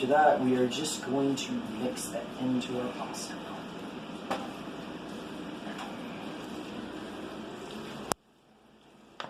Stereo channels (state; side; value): identical; both; correlation 1.00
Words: that, we are just going to mix that into our pasta.